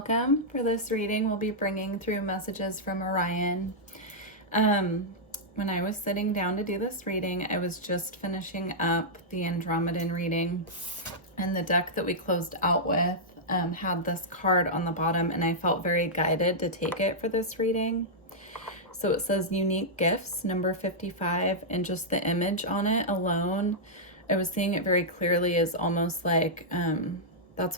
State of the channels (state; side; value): normal; both; correlation -0.09